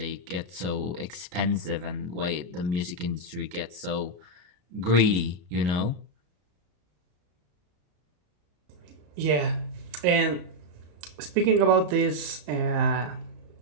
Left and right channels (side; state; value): left; late; 34 ms